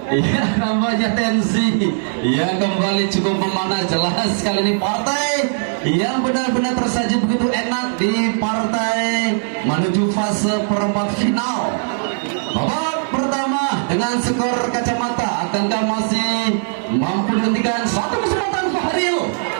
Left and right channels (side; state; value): left; silent; 67 dB below the other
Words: Iya, nampaknya tensi yang kembali cukup memanas. Jelas kali ini partai yang benar-benar tersaji begitu enak di partai menuju fase perempat final. Babak pertama dengan skor kacamata, akankah masih mampu dihentikan? Satu kesempatan Fahril